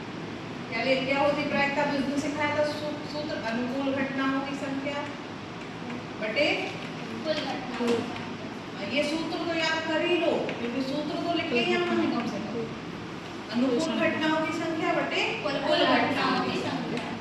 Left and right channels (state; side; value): identical; both; correlation 1.00